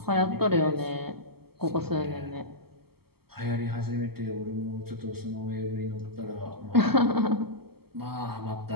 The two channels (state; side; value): late; left; 0.96 ms